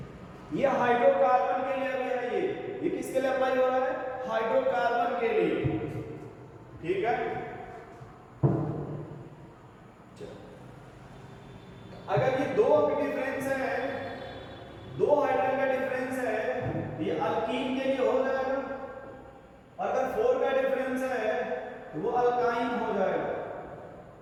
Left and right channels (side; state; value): both; identical; correlation 1.00